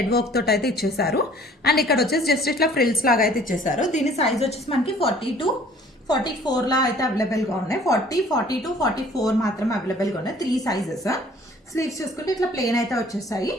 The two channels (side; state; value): both; normal; correlation 0.54